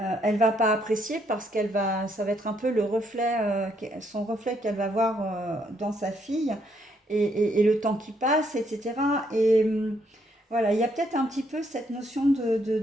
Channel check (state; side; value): normal; both; correlation 0.72